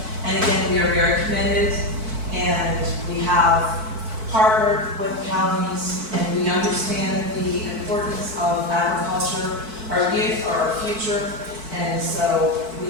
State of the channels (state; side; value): late; left; 4.6 ms